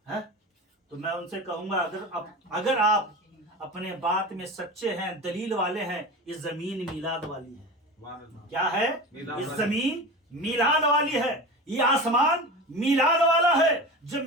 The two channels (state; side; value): normal; both; correlation 0.30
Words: تو میں ان سے کہوں گا اگر آپ اپنے بات میں سچے ہیں، دلیل والے ہیں، یہ زمین میلاد والی ہے۔ کیا ہے؟ یہ زمین میلاد والی ہے، یہ آسمان میلاد والا ہے۔